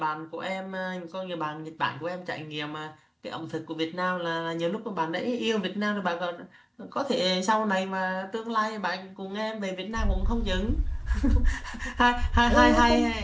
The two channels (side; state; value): both; identical; correlation 1.00